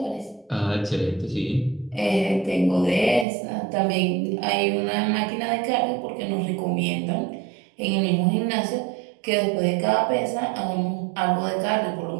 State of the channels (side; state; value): left; drops out; at 3.2 s